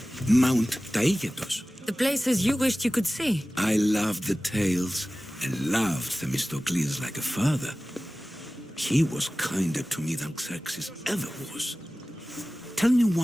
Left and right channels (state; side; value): normal; both; correlation 0.97